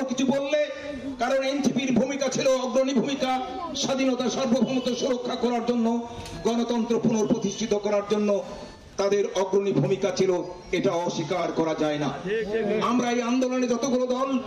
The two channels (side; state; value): both; identical; correlation 1.00